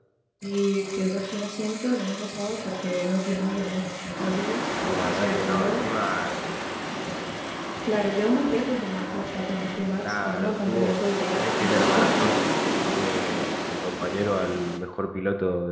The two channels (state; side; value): identical; both; correlation 1.00